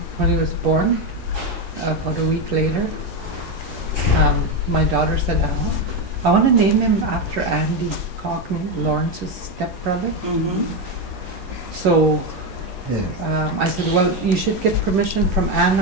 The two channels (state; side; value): normal; both; correlation 0.10